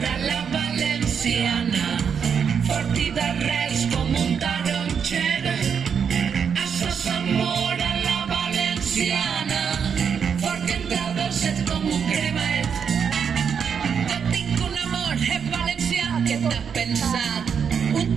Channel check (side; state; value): left; quieter; 7.0 dB